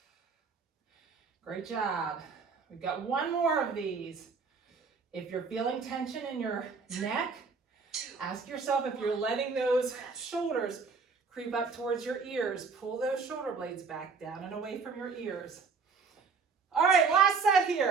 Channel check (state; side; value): quieter; left; 5.0 dB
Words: Great job. We've got 1 more of these. If you're feeling tension in your neck, 2, ask yourself if you're letting those shoulders creep up towards your ears. Pull those shoulder blades back down and away from your ears. All right, last set